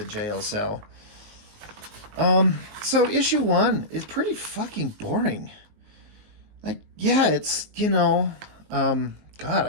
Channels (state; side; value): late; left; 19 ms